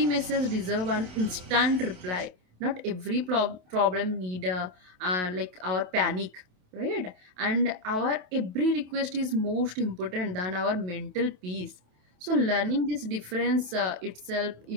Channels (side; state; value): left; late; 27 ms